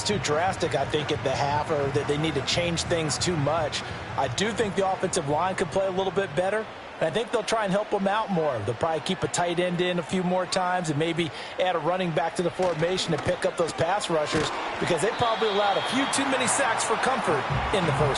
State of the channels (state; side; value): identical; both; correlation 1.00